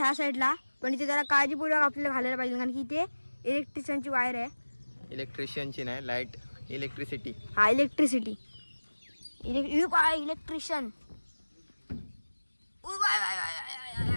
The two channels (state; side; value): inverted; both; correlation -1.00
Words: साईडला, पण इथे जरा काळजीपूर्वक आपल्याला घालायला पाहिजे, कारण की इथे इलेक्ट्रिशियनची वायर आहे. इलेक्ट्रिशियनची नाही, लाईट इलेक्ट्रिसिटी. हा इलेक्ट्रिसिटी, इलेक्ट्रिशियन.